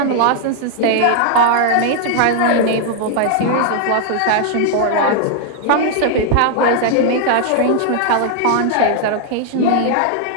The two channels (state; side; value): different; both; correlation -0.01